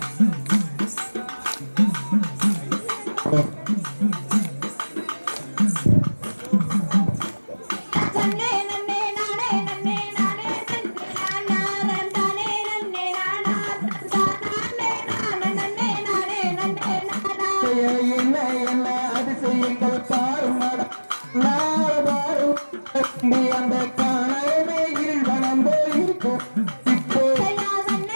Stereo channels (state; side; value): inverted; both; correlation -1.00